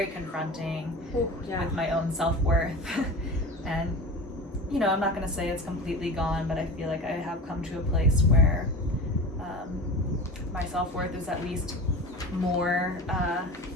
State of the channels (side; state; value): both; normal; correlation 0.33